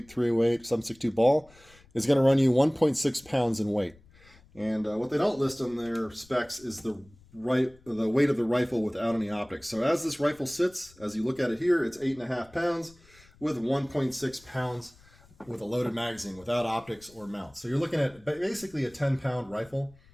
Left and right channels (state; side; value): noise; left; rumble, 27 dB below the sound